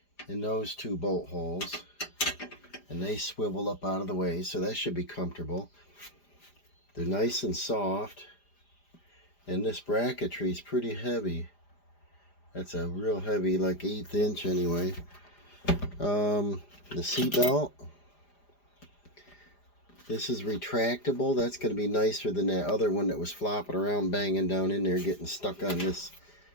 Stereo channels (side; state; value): right; late; 4.9 ms